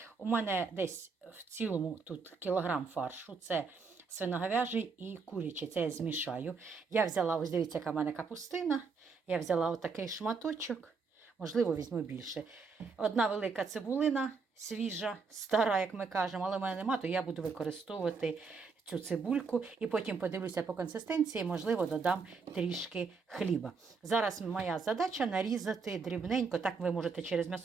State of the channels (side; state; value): left; quieter; 4.9 dB